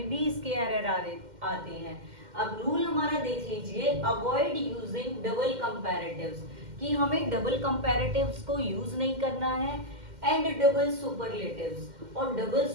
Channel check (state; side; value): late; left; 2.1 ms